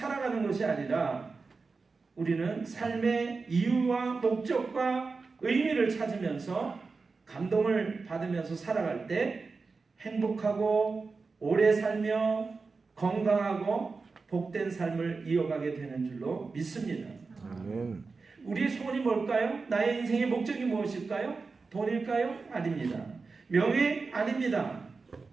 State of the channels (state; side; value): quieter; left; 4.3 dB